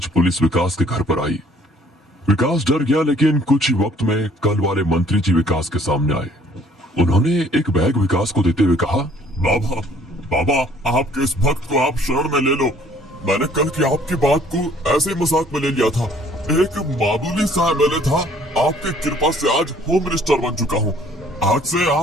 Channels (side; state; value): both; normal; correlation 0.58